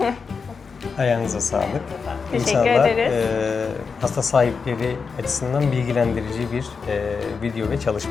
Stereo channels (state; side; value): quieter; right; 5.3 dB